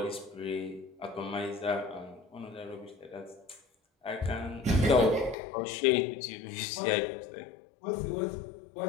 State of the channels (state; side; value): drops out; right; at 5.4 s